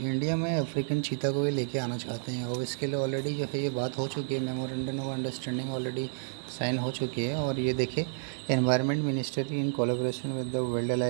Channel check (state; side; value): silent; left; digital silence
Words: में अफ्रीकन चीता को भी लेके आना चाहते हैं, और इसके लिए ऑलरेडी जो है ये बात हो चुकी है, memorandum of understanding already sign हो चुकी है। और ये देखिए, environment ministry in collaboration with the वाइल्ड